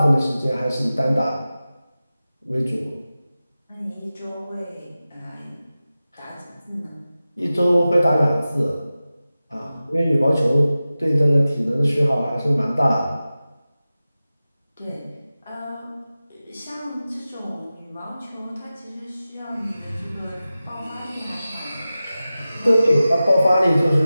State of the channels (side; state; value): both; inverted; correlation -0.95